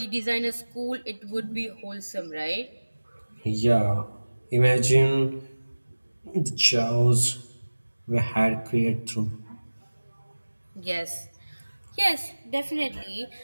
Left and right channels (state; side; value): inverted; both; correlation -1.00